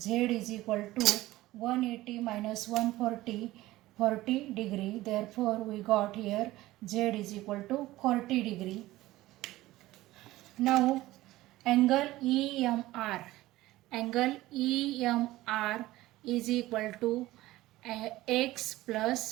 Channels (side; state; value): left; quieter; 17.1 dB